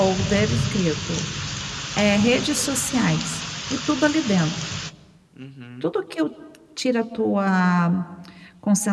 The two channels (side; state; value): both; identical; correlation 1.00